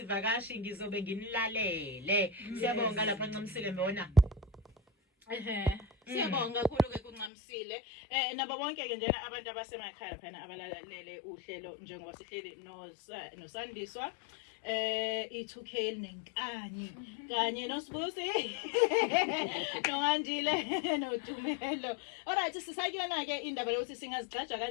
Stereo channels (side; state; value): right; drops out; at 7.3 s